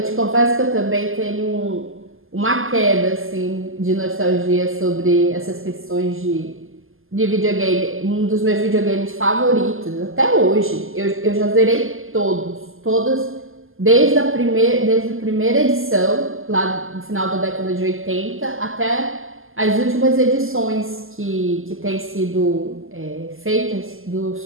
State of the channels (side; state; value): left; late; 0.60 ms